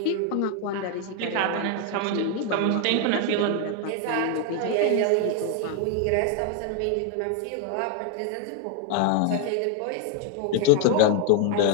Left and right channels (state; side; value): different; both; correlation 0.01